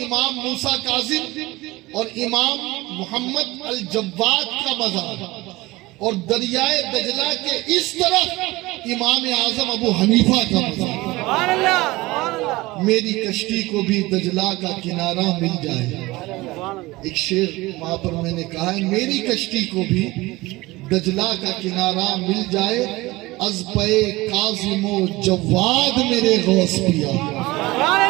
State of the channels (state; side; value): quieter; left; 20.5 dB